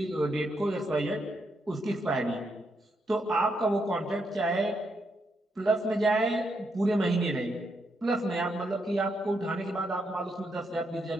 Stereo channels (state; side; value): normal; both; correlation 0.80